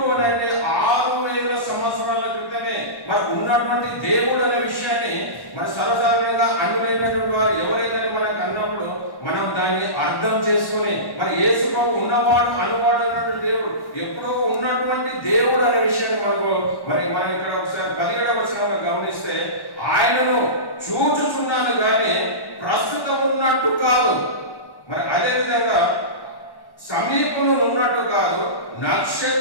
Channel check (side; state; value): right; late; 1.1 ms